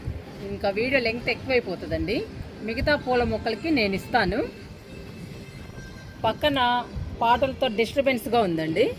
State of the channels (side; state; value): both; identical; correlation 1.00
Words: ఇంకా వీడియో లెంగ్త్ ఎక్కువైపోతుందండి. మిగతా పూల మొక్కలకి నేను ఇస్తాను. పక్కన పాటలతో డిస్టర్బెన్స్గా ఉందండి,